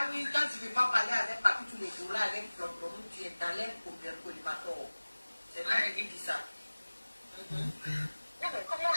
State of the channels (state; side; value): inverted; both; correlation -1.00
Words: oui, quand tu ne veux pas parler avec Papi tous les jours là, avec Floprom, tu es dans l'air pour bien collimateur. C'est moi qui dis ça.